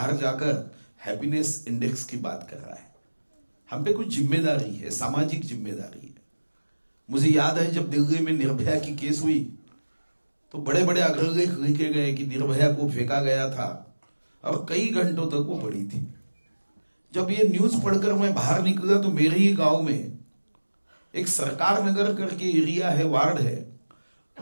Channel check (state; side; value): inverted; both; correlation -1.00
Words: जाकर हैप्पीनेस इंडेक्स की बात कर रहा है। हम पे कुछ जिम्मेदारी है, सामाजिक जिम्मेदारी है। मुझे याद है जब दिल्ली में निर्भया की केस हुई तो बड़े बड़े अग्रलेख लिखे गए कि निर्भया को फेंका गया था और कई घंटों तक वो पड़ी थी। जब ये न्यूज पढ़कर मैं बाहर निकला तो मेरे ही गांव में एक सरकार नगर करके एरिया है, वार्ड है,